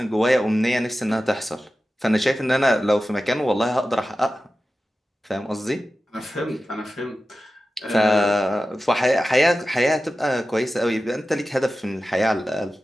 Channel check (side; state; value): both; normal; correlation 0.94